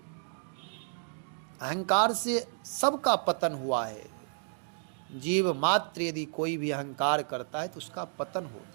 अहंकार से सबका पतन हुआ है। जीव मात्र यदि कोई भी अहंकार करता है तो उसका पतन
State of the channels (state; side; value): silent; left; digital silence